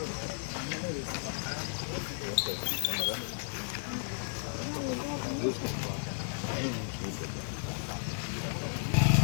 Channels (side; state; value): right; silent; digital silence